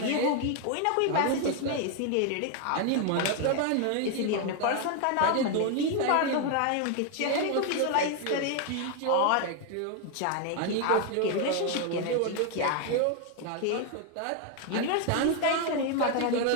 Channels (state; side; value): different; both; correlation 0.01